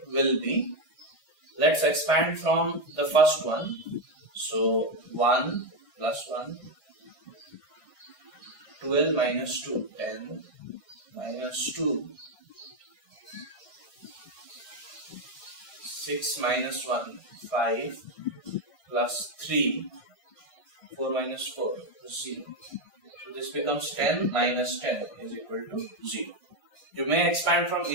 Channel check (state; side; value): late; right; 1.6 ms